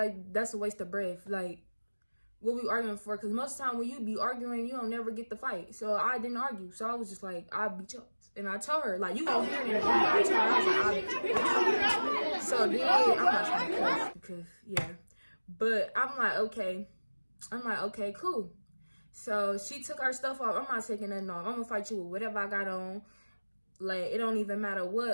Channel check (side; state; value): both; inverted; correlation -1.00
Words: that's a waste of breath. Like, what we arguing for? Because most of the time when you be arguing, you don't never get the fight. So I didn't argue. So I was just like, I'll beat you. And I told her, like, you gonna hear it in the video. I told her, I was like, I'll beat you. So then, I'm not trying to cuss because, yeah. But I'm like, okay, cool. So she took her stuff off. I'm not taking nothing off. I'm gonna fight you with whatever I got on. Like, it don't even matter